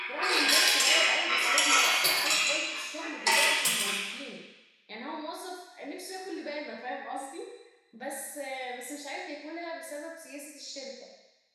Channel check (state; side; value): identical; both; correlation 1.00